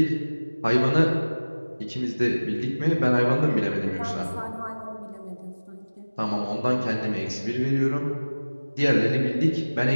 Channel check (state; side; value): inverted; both; correlation -1.00